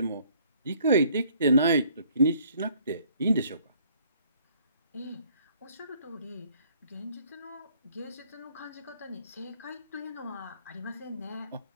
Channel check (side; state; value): both; inverted; correlation -0.61